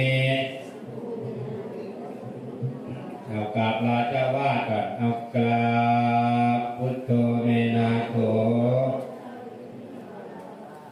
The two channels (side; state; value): both; identical; correlation 1.00